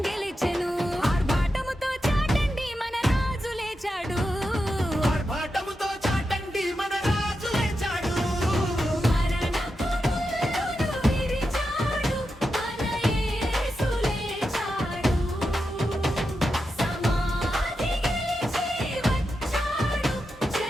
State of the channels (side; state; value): both; normal; correlation 0.88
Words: గెలిచెను ఆర్భాటముతో చాటండి మన రాజు లేచాడు ఆర్భాటముతో చాటండి మన రాజు లేచాడు మరణపు ముళ్ళును విరిచాడు మన యేసు లేచాడు సమాధి గెలిచి వచ్చాడు